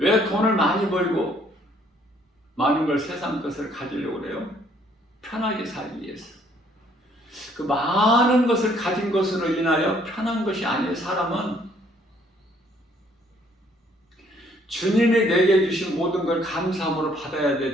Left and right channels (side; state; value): both; normal; correlation 0.64